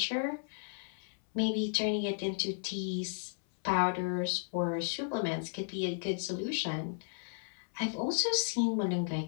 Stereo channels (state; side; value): silent; right; 55 dB below the other